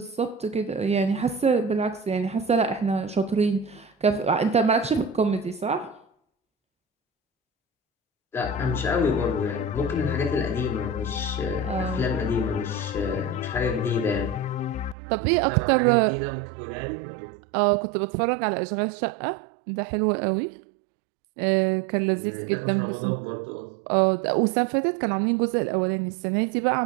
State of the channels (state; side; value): drops out; left; at 15.0 s